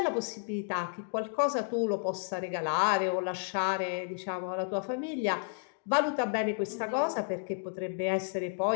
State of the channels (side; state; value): right; silent; digital silence